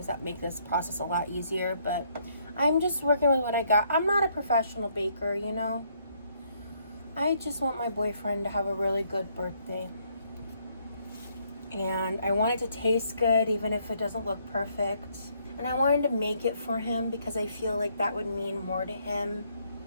that make this process a lot easier, but I'm just working with what I got. I'm not a professional baker, you know? I just want my boyfriend to have a really good birthday. And I want it to taste good, even if it doesn't look perfect. And I wanted to make it for him because I feel like that would mean more to him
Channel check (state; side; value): inverted; both; correlation -0.70